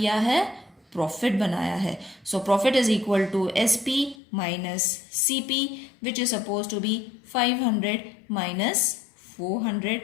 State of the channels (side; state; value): right; drops out; at 4.2 s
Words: है, प्रॉफिट बनाया है. So profit is equal to SP minus CP which is suppose to be 500 minus 400